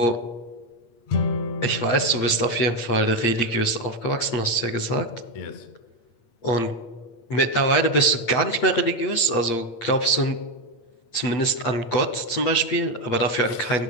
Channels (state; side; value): late; right; 8.6 ms